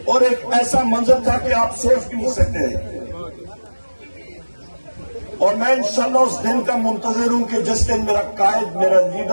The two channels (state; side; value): inverted; both; correlation -1.00